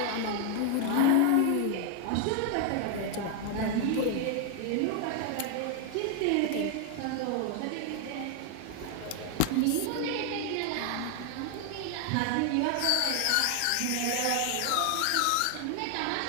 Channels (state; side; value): different; both; correlation 0.00